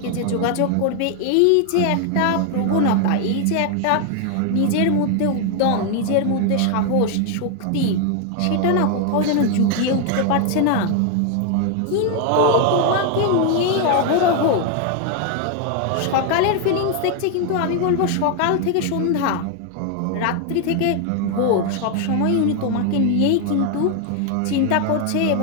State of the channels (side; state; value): both; different; correlation 0.01